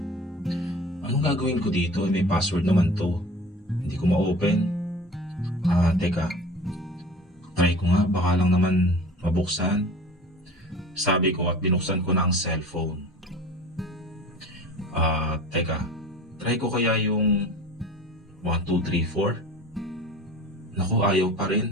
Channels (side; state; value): both; normal; correlation 0.41